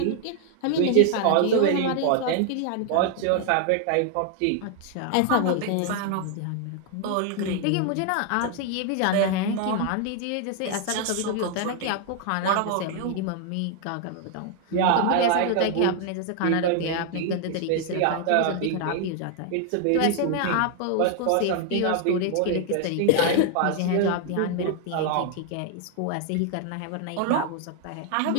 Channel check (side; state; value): both; different; correlation 0.00